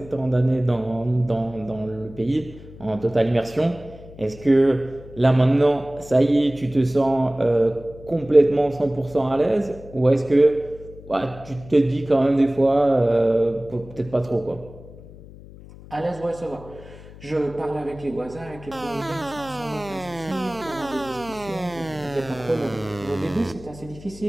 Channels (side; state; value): left; noise; hum, 18 dB below the sound